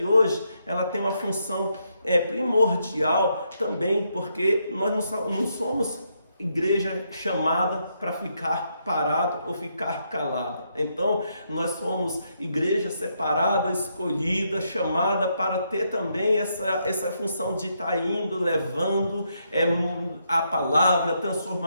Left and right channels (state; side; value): inverted; both; correlation -0.78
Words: hoje ela tem uma função primordial também, porque nós não somos igreja chamada para ficar parado ou ficar calado. Então, nós somos igreja separada, escolhida, chamada para ter também essa função de estar indo, levando a palavra, a